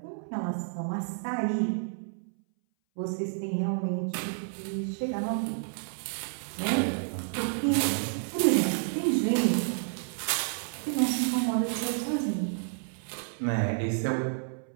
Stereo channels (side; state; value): left; silent; 58 dB below the other